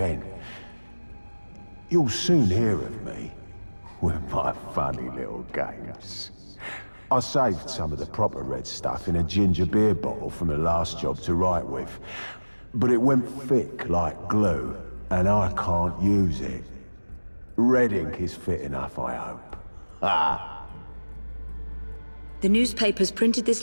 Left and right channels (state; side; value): inverted; both; correlation -1.00